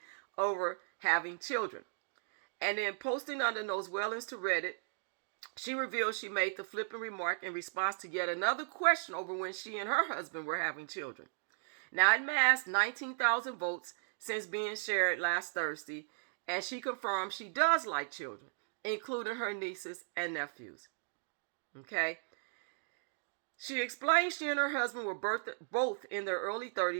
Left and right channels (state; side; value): silent; left; digital silence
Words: over having children. And then posting under those Wellens to Reddit, she revealed she made the flippant remark in response to yet another question over when she and her husband were having children. Now, it amassed 19,000 votes since being shared last Thursday, and she confirmed she does like children, including her nieces and nephews. Okay? She explained she and her husband were both in their early